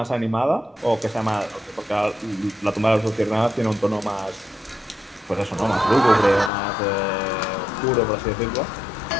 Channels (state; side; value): drops out; right; at 6.5 s